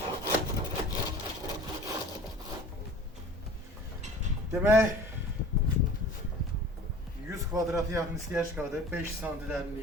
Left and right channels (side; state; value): both; normal; correlation 0.43